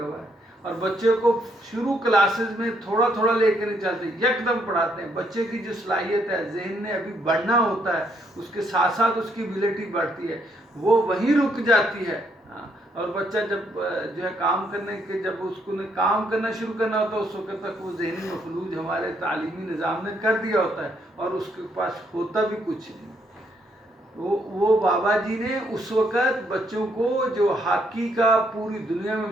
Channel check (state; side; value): normal; both; correlation 0.72